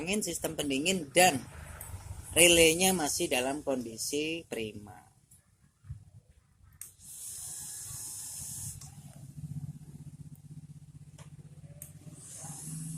sistem pendingin dan relaynya masih dalam kondisi prima.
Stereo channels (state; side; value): identical; both; correlation 1.00